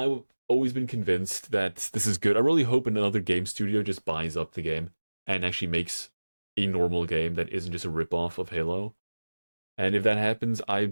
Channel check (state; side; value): inverted; both; correlation -1.00